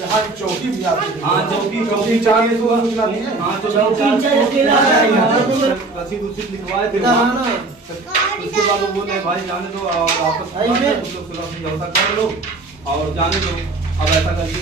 की चौकी भी आती है? हाँ चौकी चाहिए तो सूचना दी है। हाँ रसीद उसीद लिखवाए थे वहाँ। उसके बाद वो बोले भाई जाने दो और वापस समझौता कर लो और जाने दो, अब ऐसा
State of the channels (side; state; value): left; quieter; 3.3 dB